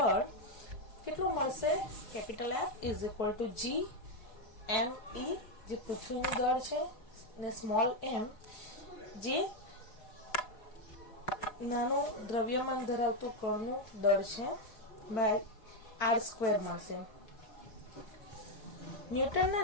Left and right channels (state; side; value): late; right; 4.6 ms